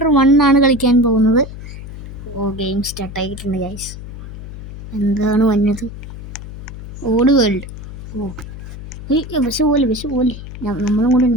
1 ആണ് കളിക്കാൻ പോകുന്നത്. ഗെയിം സ്റ്റാർട്ടായിട്ടുണ്ട് ഗൈസ്. എന്താണ് വന്നത്? ഓട് വേൾഡ്. ബസ് പോലെ നമ്മളും കൂടെ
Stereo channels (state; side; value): noise; left; hum, 12 dB below the sound